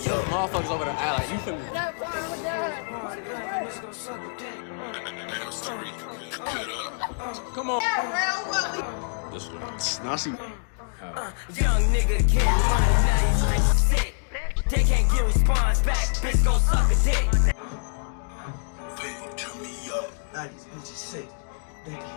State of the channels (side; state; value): right; silent; digital silence